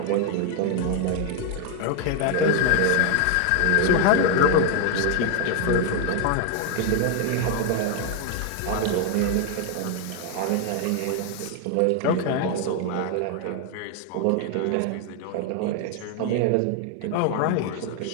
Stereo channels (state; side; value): different; both; correlation 0.01